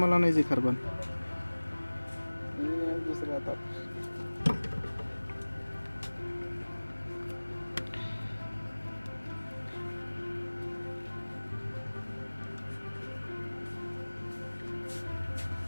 انا يجي خربان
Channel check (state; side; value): inverted; both; correlation -1.00